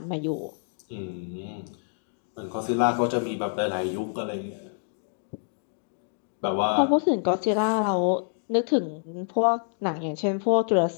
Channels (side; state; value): right; silent; 60 dB below the other